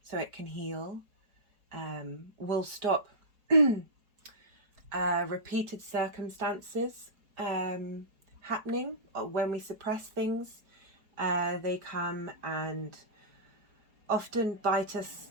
so it can heal will stop repeated circumstances happening. When we suppress things, they come and often bite us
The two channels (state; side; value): late; left; 4.8 ms